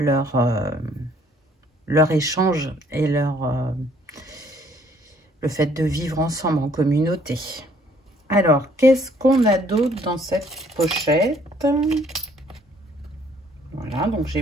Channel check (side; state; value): both; normal; correlation 0.62